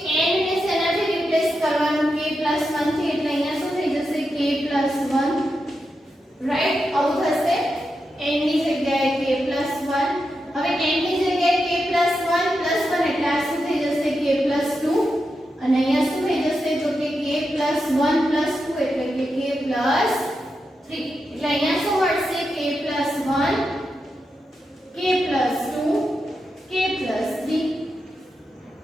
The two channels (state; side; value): normal; both; correlation 0.87